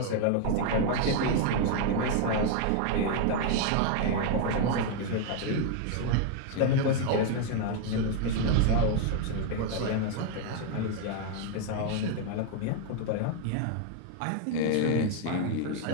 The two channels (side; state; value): both; different; correlation 0.00